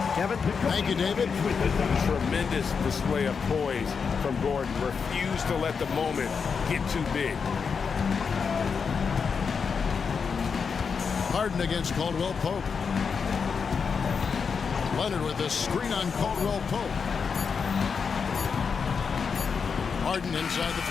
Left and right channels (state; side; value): quieter; right; 5.8 dB